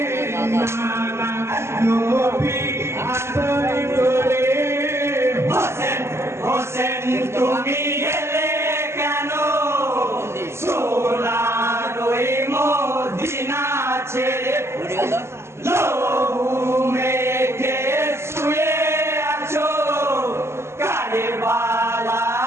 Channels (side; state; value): left; late; 0.13 ms